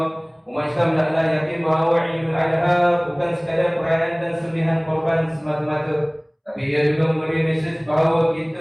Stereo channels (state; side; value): identical; both; correlation 1.00